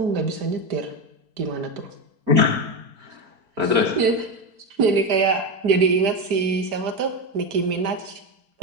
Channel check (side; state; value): left; late; 4.5 ms